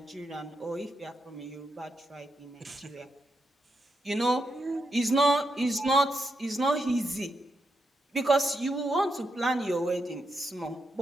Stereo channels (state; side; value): normal; both; correlation 0.84